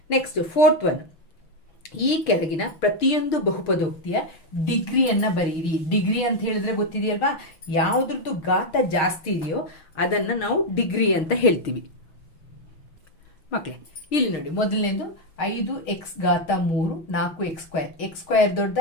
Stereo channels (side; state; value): right; late; 6.4 ms